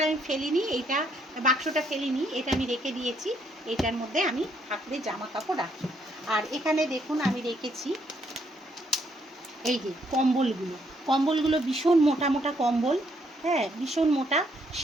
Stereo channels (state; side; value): normal; both; correlation 0.71